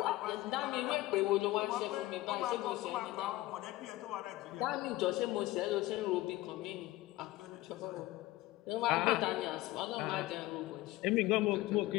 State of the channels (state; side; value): quieter; right; 17.7 dB